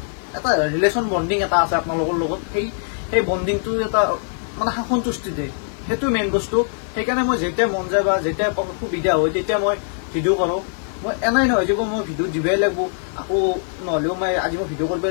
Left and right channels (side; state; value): right; silent; digital silence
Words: এটা ৰিলেশ্যন বণ্ডিং এটা আছে আপোনালোকৰ লগত সেই বণ্ডিংটো এটা মানে সন্তুষ্টি দিয়ে সেইটো মেইন বস্তু সেইকাৰণে মই যেতিয়া মন যায় বা যেতিয়া সুবিধা হয় তেতিয়া মই ভিডিঅ' কৰোঁ মই এনেই নহয় যে মই ভিডিঅ' দিবই লাগিব আকৌ নহ'লেও মই আজি মই ভিডিঅ'